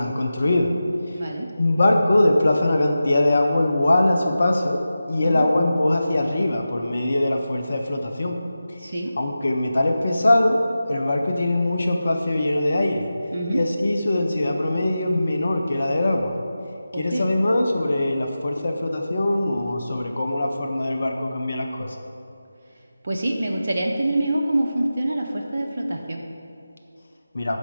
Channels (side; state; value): both; inverted; correlation -0.93